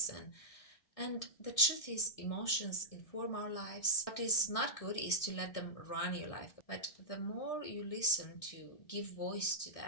And the truth is, emotions inform our lives. What is not good is to let them run your life. But the more you listen to give voice to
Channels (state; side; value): late; right; 1.6 ms